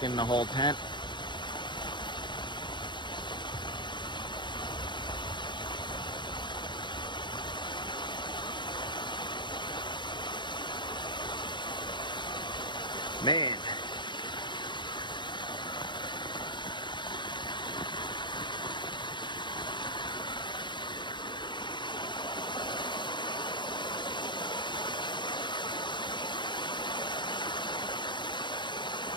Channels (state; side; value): late; right; 0.22 ms